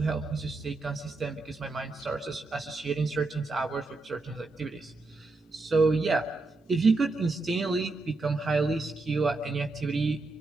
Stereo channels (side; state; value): left; quieter; 3.4 dB